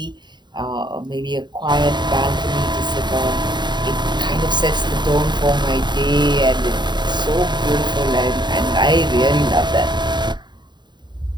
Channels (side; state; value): left; late; 0.21 ms